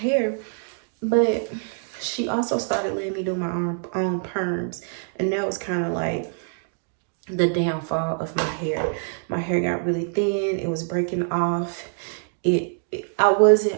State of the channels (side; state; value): left; silent; digital silence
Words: but she also started letting me do my own perms. And that was kind of like the downfall of my hair. My hair got really thin. It was breaking off.